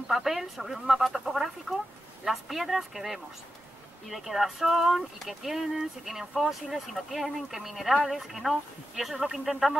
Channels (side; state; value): both; normal; correlation 0.90